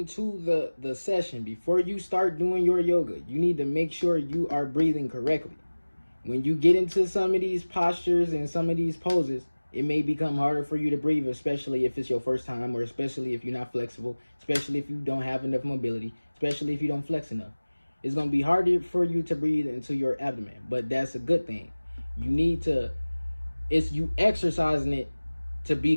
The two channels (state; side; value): inverted; both; correlation -1.00